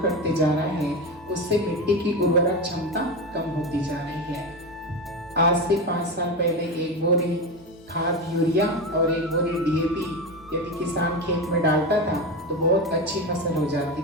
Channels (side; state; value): right; noise; hum, 27 dB below the sound